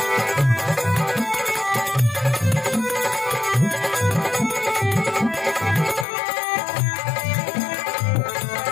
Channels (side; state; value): right; drops out; at 6.1 s